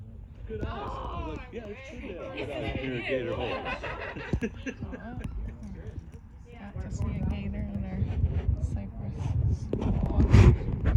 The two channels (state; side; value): identical; both; correlation 1.00